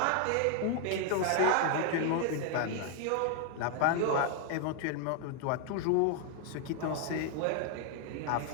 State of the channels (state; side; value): different; both; correlation 0.00